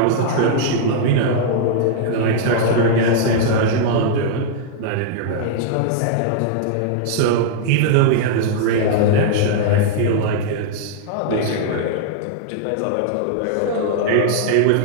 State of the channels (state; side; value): different; both; correlation -0.01